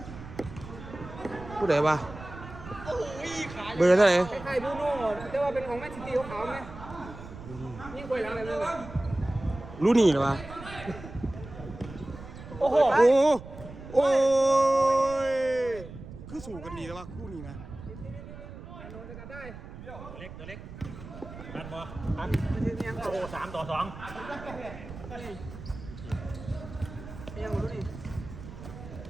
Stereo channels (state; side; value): noise; right; rumble, 13 dB below the sound